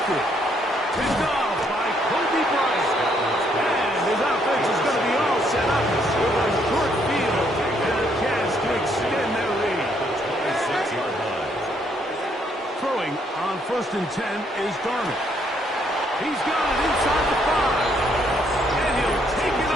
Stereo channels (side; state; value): both; normal; correlation 0.70